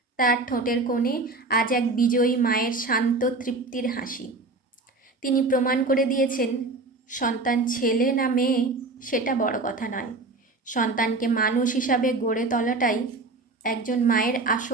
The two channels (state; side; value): quieter; left; 3.4 dB